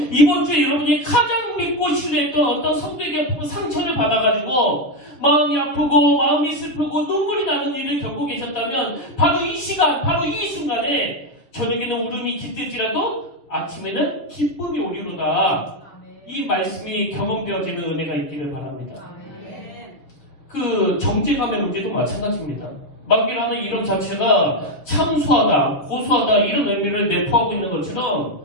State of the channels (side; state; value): right; late; 7.0 ms